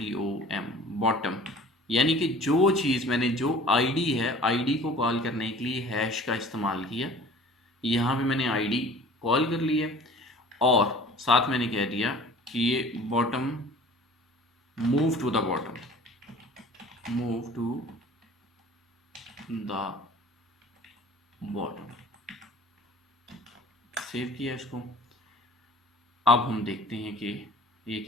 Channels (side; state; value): both; normal; correlation 0.46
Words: बॉटम, यानी कि जो चीज़ मैंने जो आईडी है, आईडी को कॉल करने के लिए हैश का इस्तेमाल किया। यहाँ पे मैंने आईडी कॉल कर लिया और साथ मैंने कह दिया कि ये bottom, move to the bottom, move to the bottom. Save किया इसको। अब हम देखते हैं कि ये